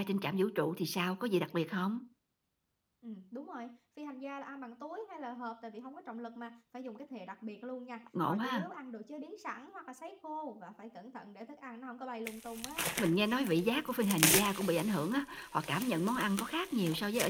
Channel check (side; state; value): both; identical; correlation 1.00